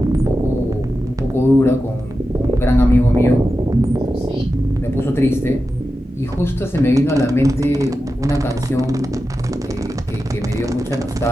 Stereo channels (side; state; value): both; normal; correlation 0.91